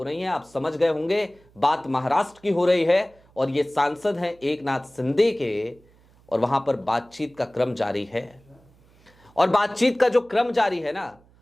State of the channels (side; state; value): right; noise; hum, 30 dB below the sound